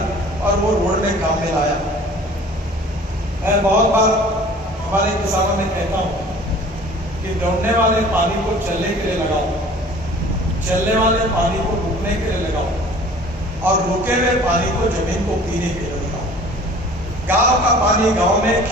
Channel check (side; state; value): both; normal; correlation 0.47